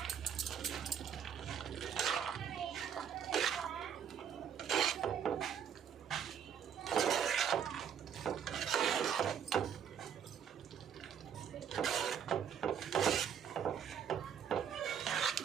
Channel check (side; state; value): left; quieter; 8.1 dB